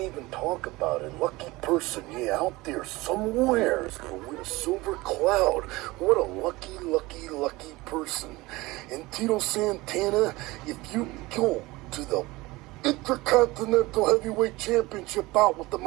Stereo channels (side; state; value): left; quieter; 21.0 dB